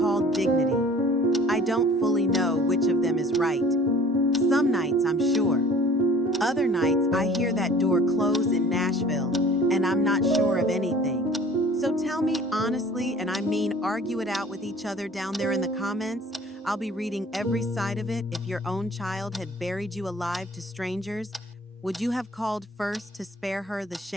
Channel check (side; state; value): both; normal; correlation 0.49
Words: dignity. I don't fully know which of them is right. Some nights I'm sure. Other nights I hear that door close in Nashville and I'm not sure of anything. So tell me honestly, and I mean argue it out with each other down there in the comments. I'll be reading every side of it. If your own child had buried you alive to strangers, would you have called first to spare her the